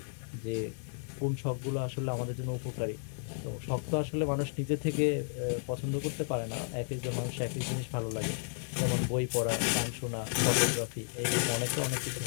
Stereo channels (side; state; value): right; silent; 56 dB below the other